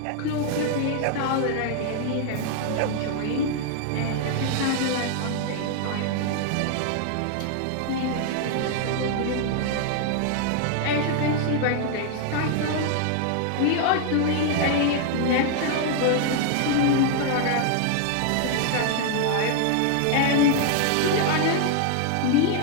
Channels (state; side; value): different; both; correlation 0.00